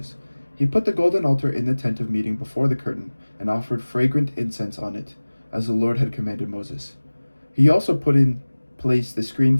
He put the golden altar in the tent of meeting before the curtain, and offered fragrant incense on it, as the Lord had commanded Moses. He also put in place the screen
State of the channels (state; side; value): inverted; both; correlation -1.00